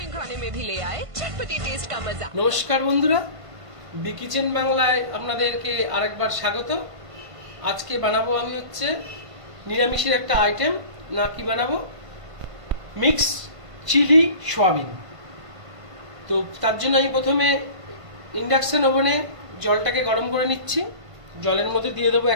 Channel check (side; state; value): left; late; 1.5 ms